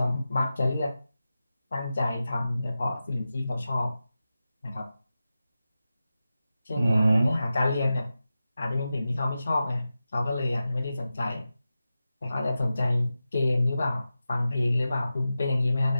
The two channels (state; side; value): inverted; both; correlation -0.92